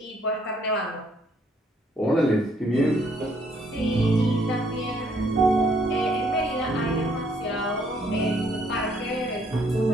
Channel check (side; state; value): both; normal; correlation 0.67